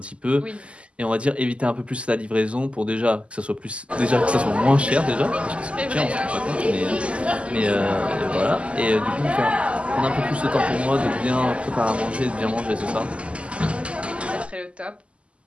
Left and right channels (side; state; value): left; late; 0.057 ms